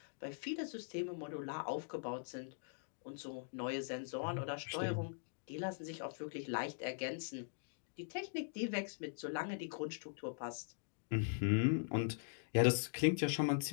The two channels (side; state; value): right; silent; digital silence